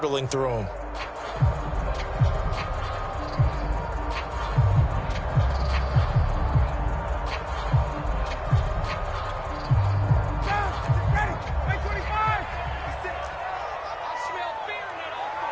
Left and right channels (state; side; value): identical; both; correlation 1.00